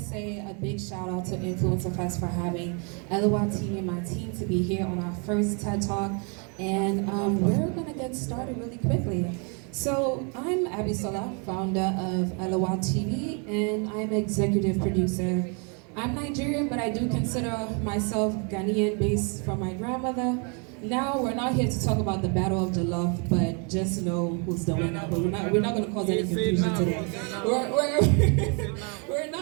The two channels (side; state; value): left; quieter; 36.4 dB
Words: a big shout out to Influencer Fest for having LOL TV and my team to be here on our first TED Talk. And we're going to get started really quickly. So I'm Abisola, founder of LOL TV, and I'm executive producer. I'm Nigerian, but I do consider myself Ghanaian based from my grandmother. Now we're not here to talk about the Battle of Jollof, but just know who's the winner. But we're not going to cause any confusion today. We're